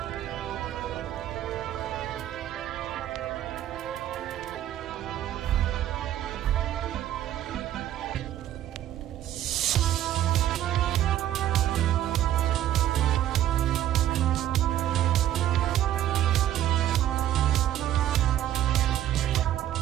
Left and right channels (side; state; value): left; quieter; 12.2 dB